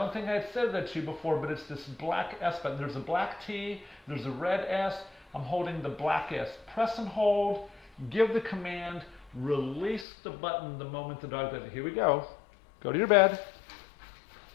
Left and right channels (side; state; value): right; drops out; at 10.1 s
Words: think I had said that to you before, but it's this black S button. There's a black T, there's a red S. I'm holding the black S. Press and hold, give the command, release the button the moment the dog does it. Here we go. Go to your bed.